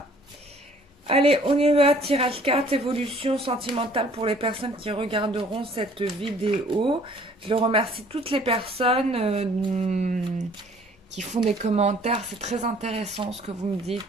Allez, on y va, tirage carte, évolution sentimentale pour les personnes qui regarderont cette vidéo. Je remercie toutes les personnes qui font des commentaires. C'est très intéressant ce que vous me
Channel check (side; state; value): both; normal; correlation 0.56